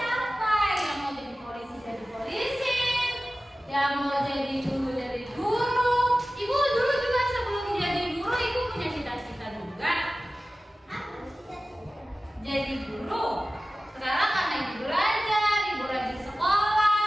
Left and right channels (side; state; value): both; normal; correlation 0.96